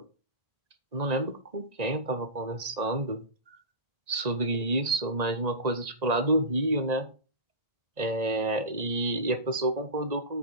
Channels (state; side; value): late; left; 1.9 ms